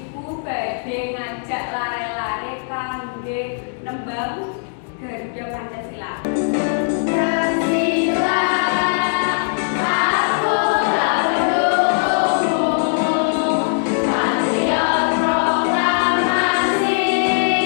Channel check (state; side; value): silent; right; digital silence